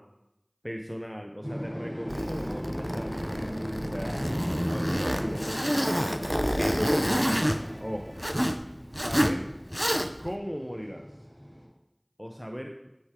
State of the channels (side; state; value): both; identical; correlation 1.00